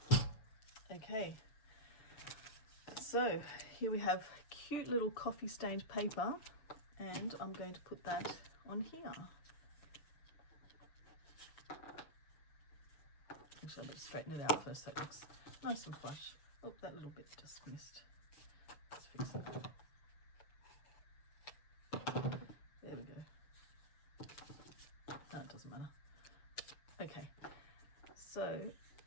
Okay, so here we have cute little coffee stained paper, and I'm going to put that on here. Actually, I better straighten it out first so it looks nice and flush. Oh, that little bit just missed. Let's fix that. There we go. No, it doesn't matter. Okay, so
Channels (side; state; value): right; late; 6.9 ms